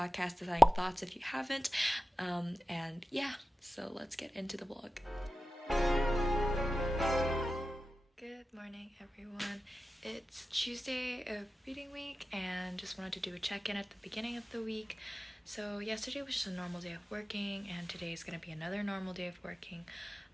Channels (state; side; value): normal; both; correlation 0.94